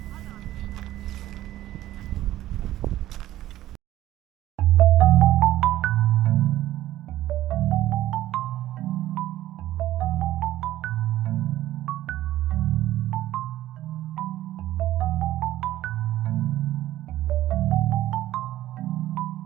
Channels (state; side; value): quieter; left; 14.3 dB